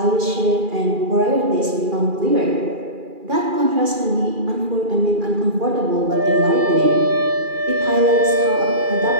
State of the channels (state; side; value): late; left; 2.4 ms